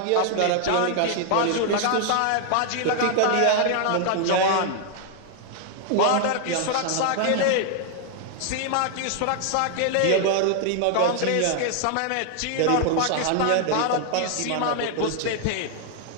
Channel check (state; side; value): different; both; correlation 0.00